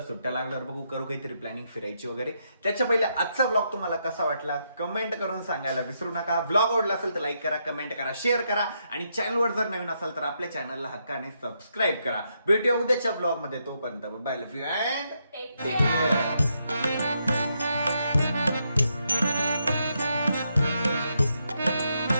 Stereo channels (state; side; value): inverted; both; correlation -0.79